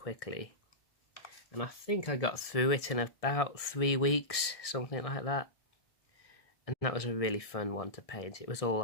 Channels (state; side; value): late; right; 1.6 ms